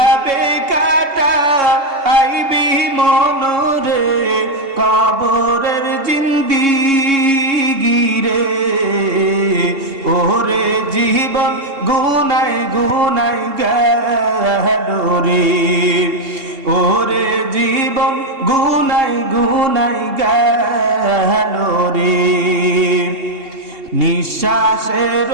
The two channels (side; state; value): left; late; 2.7 ms